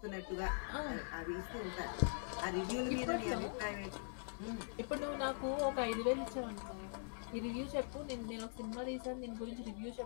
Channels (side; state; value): right; silent; digital silence